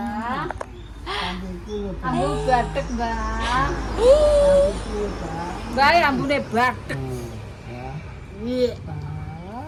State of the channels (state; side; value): identical; both; correlation 1.00